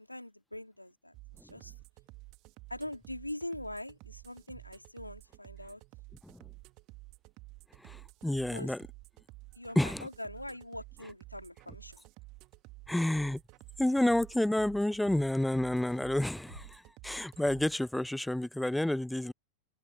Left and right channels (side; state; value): both; normal; correlation 0.89